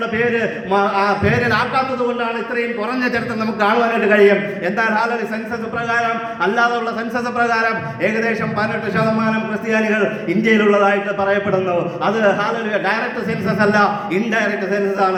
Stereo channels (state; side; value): identical; both; correlation 1.00